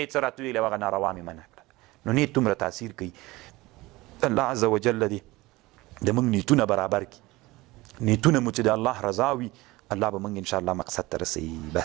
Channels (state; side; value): quieter; left; 20.5 dB